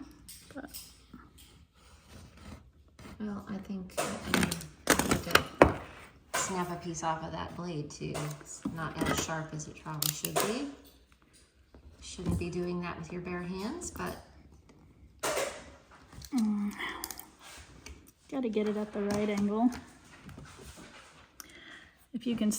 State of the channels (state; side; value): identical; both; correlation 1.00